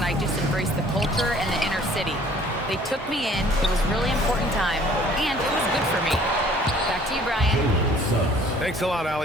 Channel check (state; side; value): normal; both; correlation 0.55